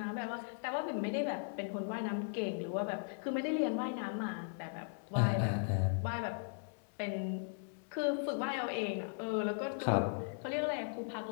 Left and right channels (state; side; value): silent; right; digital silence